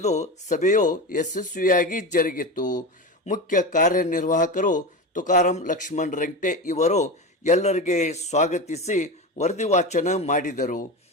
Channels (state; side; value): normal; both; correlation 0.23